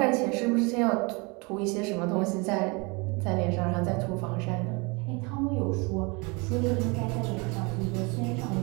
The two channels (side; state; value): left; quieter; 28.8 dB